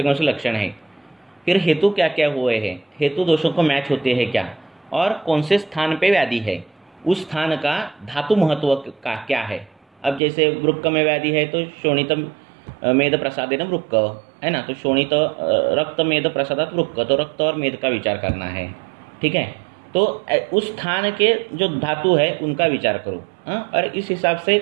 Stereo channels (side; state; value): left; drops out; at 10.2 s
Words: लक्षण हैं, फिर हेतु क्या क्या हुए हैं, हेतु दोषों को मैच होते हैं क्या, और कौन से स्थान पे व्याधि है, उस स्थान का धातु महत्व का क्या है. अब जैसे वृक्क में व्याधि है तो शोणित मेद प्रसादेन वृक्क है ना, तो शोणित रक्त मेद प्रसादात वृक्क, तो रक्त और मेद का विचार करना है. ठीक है. तो उस स्थान के जो धातु है उनका विचार करो. और इस हिसाब से